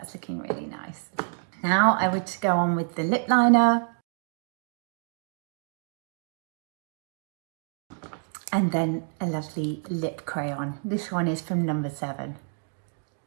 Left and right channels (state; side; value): silent; left; 59 dB below the other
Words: looking really nice. Now I would go on with the lip liner, and then a lovely lip crayon. This one is from number 7.